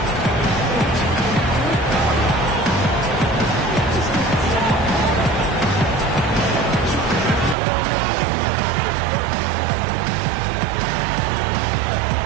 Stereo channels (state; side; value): drops out; left; at 7.6 s